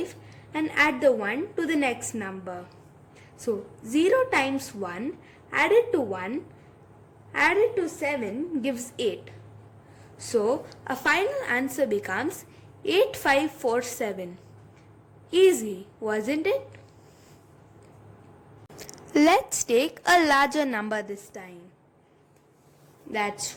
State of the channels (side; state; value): both; identical; correlation 1.00